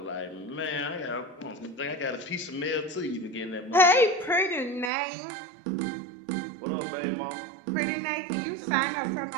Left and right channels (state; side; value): drops out; left; at 4.9 s